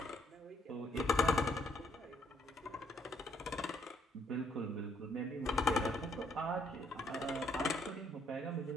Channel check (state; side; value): normal; both; correlation 0.69